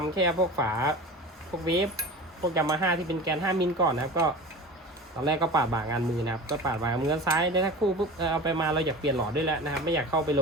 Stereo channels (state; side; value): normal; both; correlation 0.34